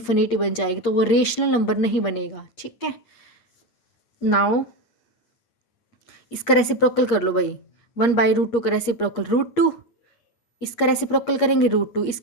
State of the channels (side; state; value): right; late; 8.5 ms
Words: बन जाएगी, तो वो रेशनल नंबर नहीं बनेगा। ठीक है, नाउ इसका रेसिप्रोकल कर लो भाई। 1/√2 का रेसिप्रोकल √2, इसका रेसिप्रोकल करेंगे √2,